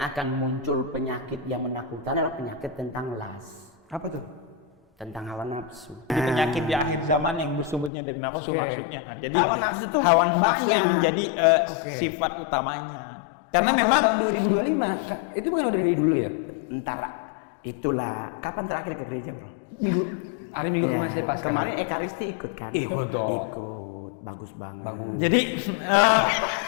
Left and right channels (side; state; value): right; drops out; at 7.9 s